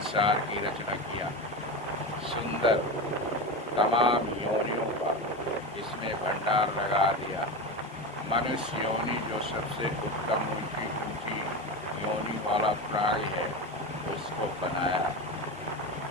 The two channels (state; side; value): normal; both; correlation 0.21